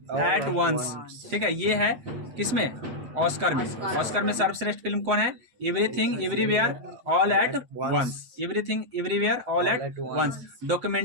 once, ठीक है। ये है किसमें? ऑस्कर में। ऑस्कर में सर्वश्रेष्ठ फिल्म कौन है? Everything everywhere all at once. Everything everywhere all at once.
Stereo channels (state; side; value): late; left; 7.9 ms